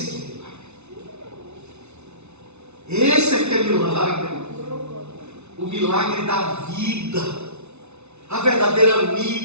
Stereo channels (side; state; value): left; late; 0.81 ms